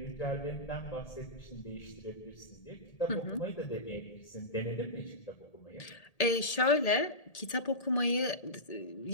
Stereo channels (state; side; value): late; right; 1.8 ms